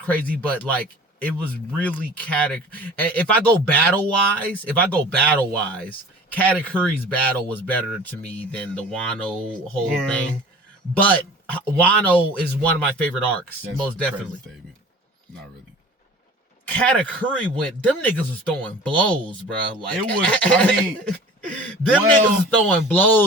but like it was really If I go battle wise, Katakuri's battle was better to me than the Wano whole thing. But Wano is one of my favorite arcs, most definitely. Not really. Katakuri them niggas was throwing blows, bro. Like it was. I mean, niggas was throwing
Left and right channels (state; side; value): normal; both; correlation 0.43